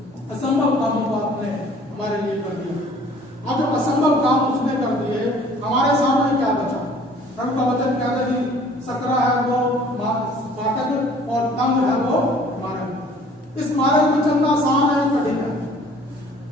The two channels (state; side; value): normal; both; correlation 0.53